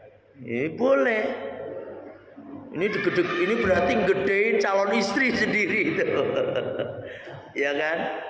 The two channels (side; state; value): both; identical; correlation 1.00